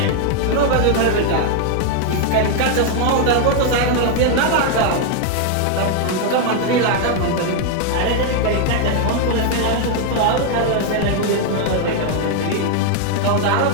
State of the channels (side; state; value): both; different; correlation 0.00